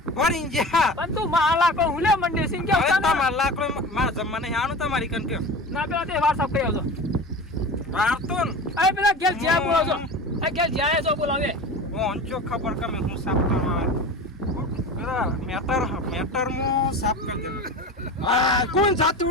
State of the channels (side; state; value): both; normal; correlation 0.32